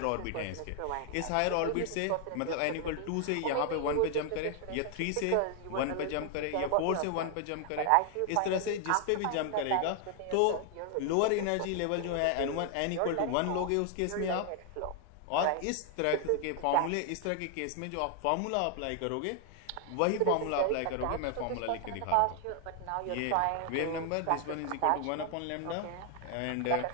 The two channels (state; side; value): different; both; correlation 0.00